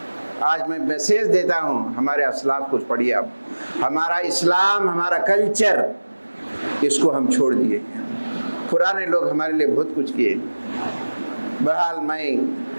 آج میں میسیج دیتا ہوں، ہمارے اسلاف کچھ پڑھیے آپ، ہمارا اسلام، ہمارا کلچر، اس کو ہم چھوڑ دیے، پرانے لوگ ہمارے لیے بہت کچھ کیے۔ بہرحال میں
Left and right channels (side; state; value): both; inverted; correlation -1.00